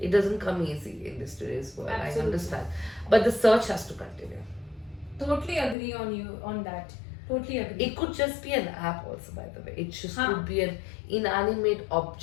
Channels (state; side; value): drops out; right; at 5.8 s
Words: doesn't come easy in this today's world. Absolutely. I understand, but the search has to continue. Totally agree on you on that. Totally agree. It could just be an app also, by the way. It just Huh. could be an inanimate